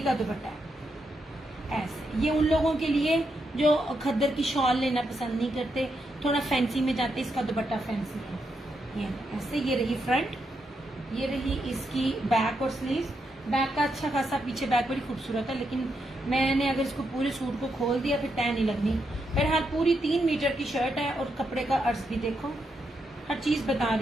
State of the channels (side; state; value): both; normal; correlation 0.82